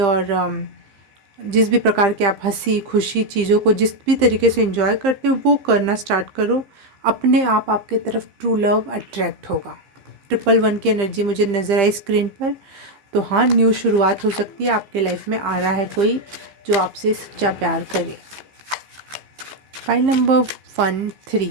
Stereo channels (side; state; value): left; late; 15 ms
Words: और जिस भी प्रकार के आप हंसी खुशी चीज़ों को जिस भी तरीके से एंजॉय करते हो वो करना स्टार्ट करो। अपने आप आपके तरफ ट्रू लव अट्रैक्ट होगा। 111 की एनर्जी मुझे नज़र आई स्क्रीन पर। तो हाँ, न्यू शुरुआत हो सकती है, आपके लाइफ में आ रहा है कोई जो आपसे सच्चा प्यार करे। फाइल नंबर